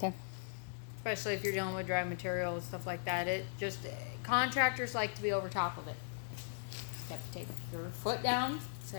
Especially if you're dealing with dry material and stuff like that. Contractors like to be over top of it. You have to take your foot down,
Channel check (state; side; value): silent; right; digital silence